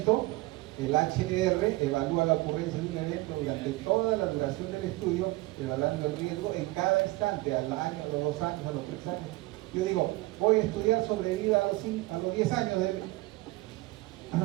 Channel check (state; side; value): quieter; left; 20.3 dB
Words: el HR evalúa la ocurrencia de un evento durante toda la duración del estudio, evaluando el riesgo en cada instante, al año, a los 2 años, a los 3 años. Yo digo, voy a estudiar sobrevida a los 10 años,